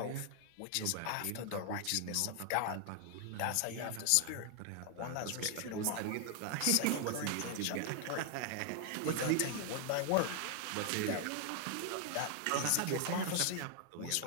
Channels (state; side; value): different; both; correlation 0.00